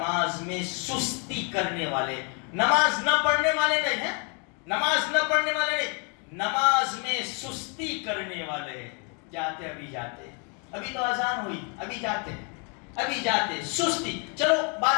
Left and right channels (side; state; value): right; quieter; 36.5 dB